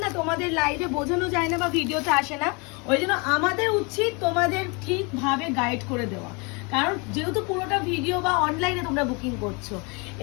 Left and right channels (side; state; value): right; quieter; 30.5 dB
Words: না তোমাদের লাইভে বোঝানো যায় না বা ভিডিওতে আসে না, ওই জন্য আমাদের উচিত তোমাদের ঠিকভাবে গাইড করে দেওয়া। কারণ যেহেতু পুরোটা ভিডিও বা অনলাইনে তোমরা বুকিং করছো।